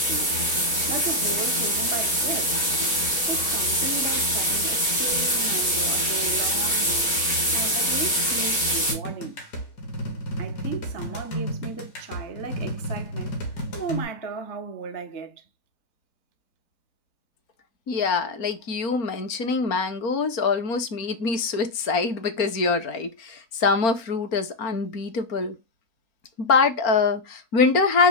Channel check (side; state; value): right; late; 4.4 ms